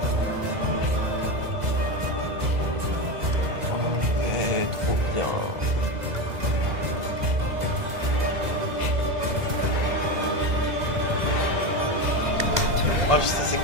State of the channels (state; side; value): late; left; 2.0 ms